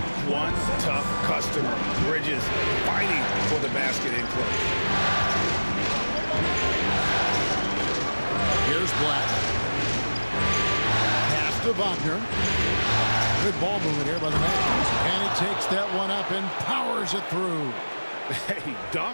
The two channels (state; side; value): inverted; both; correlation -1.00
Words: One tough customer. Bridges fighting for the basket in close. Wagner. Good ball movement here by the Magic. And he takes that one up and powers it through. Hey,